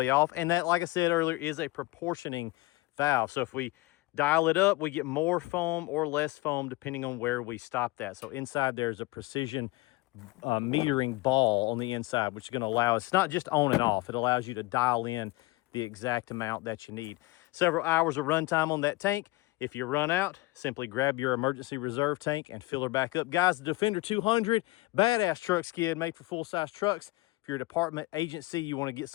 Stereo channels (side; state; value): right; quieter; 21.0 dB